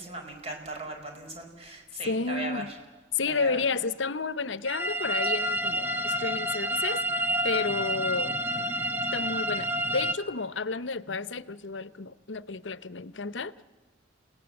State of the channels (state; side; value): normal; both; correlation -0.04